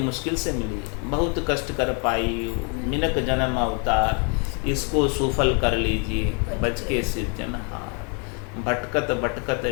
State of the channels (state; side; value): quieter; right; 35.4 dB